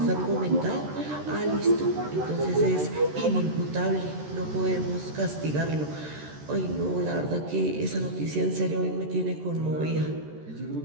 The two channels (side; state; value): left; late; 13 ms